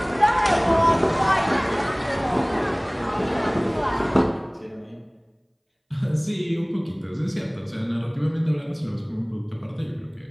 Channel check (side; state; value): both; identical; correlation 1.00